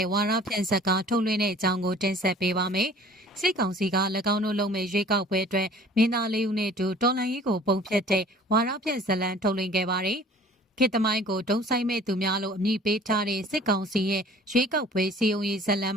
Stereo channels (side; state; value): both; normal; correlation 0.50